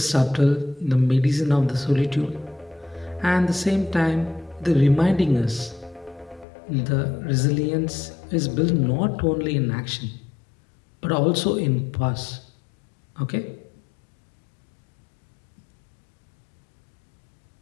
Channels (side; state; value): right; drops out; at 6.5 s